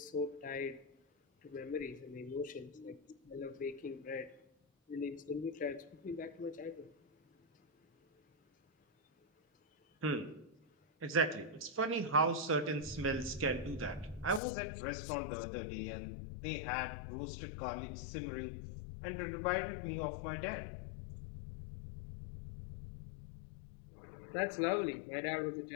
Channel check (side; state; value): right; drops out; at 14.4 s